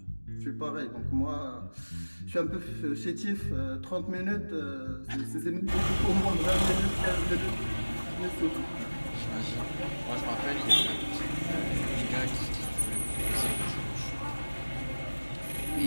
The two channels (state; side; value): inverted; both; correlation -1.00